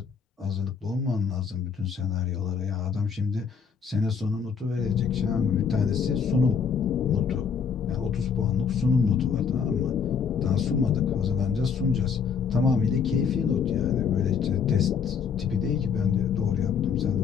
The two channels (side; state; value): right; quieter; 6.4 dB